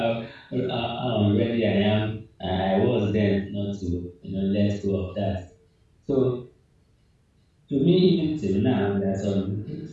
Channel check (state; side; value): identical; both; correlation 1.00